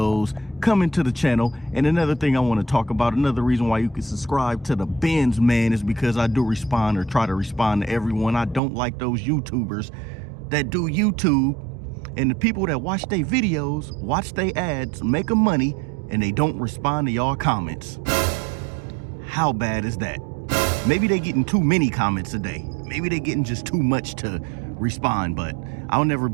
coming to the channel. And another thing I want to talk about, another reason why you can subscribe to the Benz Man is because I do respond or try to respond to everyone. I don't like those YouTubers that do YouTube and the people that watch their videos, watch their ads, make them money, and they don't respond to y'all comments. How bad is that? Maybe they getting too many comments a day. Maybe they getting just too much to respond, but I'll never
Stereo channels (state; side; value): drops out; left; at 8.6 s